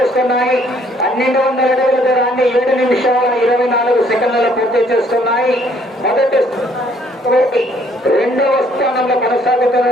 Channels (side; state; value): both; normal; correlation 0.63